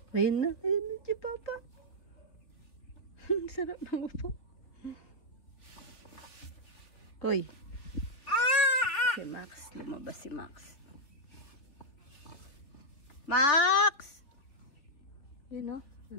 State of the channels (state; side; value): late; right; 3.6 ms